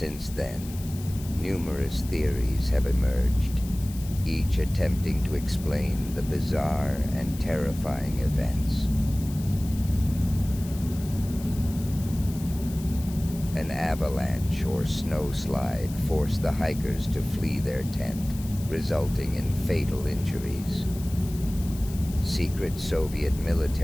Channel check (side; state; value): left; noise; hiss, 17 dB below the sound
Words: then, numerous theories have emerged, each attempting to explain the bizarre and terrifying events. An avalanche or snowslide forced the hikers to flee their tent, resulting in fatal injuries. Secret Soviet